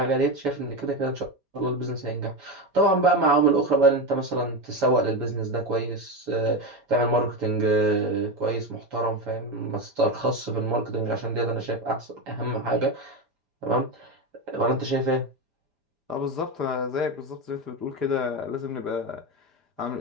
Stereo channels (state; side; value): late; left; 5.0 ms